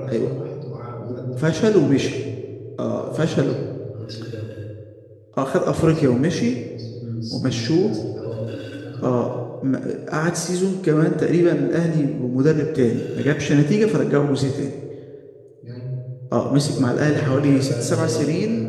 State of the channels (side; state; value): both; identical; correlation 1.00